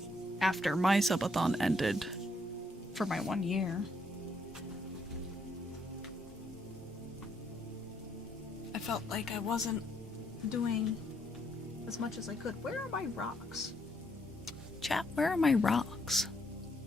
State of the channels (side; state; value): both; normal; correlation 0.73